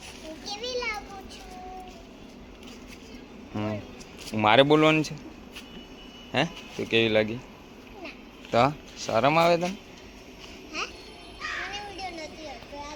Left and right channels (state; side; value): identical; both; correlation 1.00